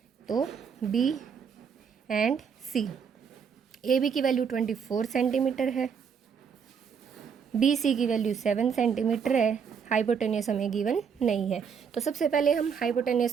तो B and C. A B की वैल्यू 24 सेंटीमीटर है, बी सी की वैल्यू 7 सेंटीमीटर है। हाइपोटेनियस हमें गिवन नहीं है, तो सबसे पहले हम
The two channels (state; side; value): quieter; left; 6.7 dB